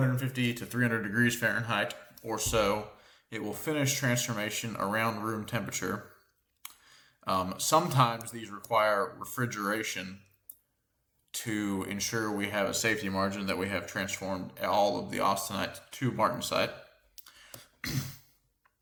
to 300 degrees Fahrenheit or so. It will finish transformation around room temperature. Sometimes these require refrigeration to ensure we have a safety margin that we have transformed all of the austenite to martensite.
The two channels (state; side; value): identical; both; correlation 1.00